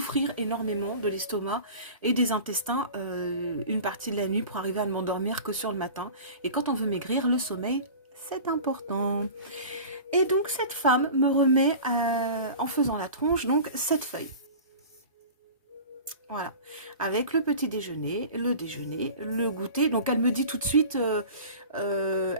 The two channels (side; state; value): both; inverted; correlation -0.38